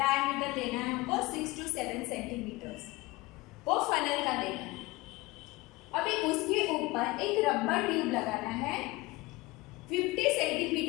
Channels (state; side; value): quieter; right; 21.6 dB